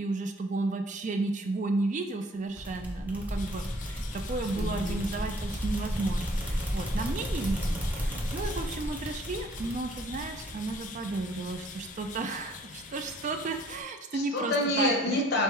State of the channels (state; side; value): normal; both; correlation 0.57